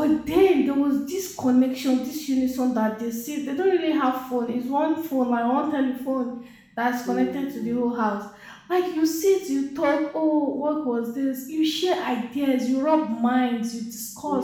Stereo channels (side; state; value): both; identical; correlation 1.00